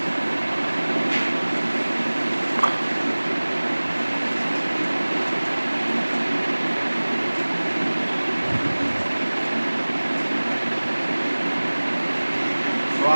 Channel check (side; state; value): both; inverted; correlation -1.00